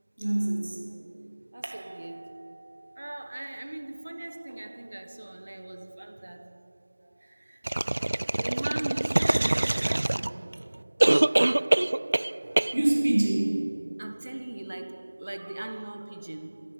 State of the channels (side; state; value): both; inverted; correlation -1.00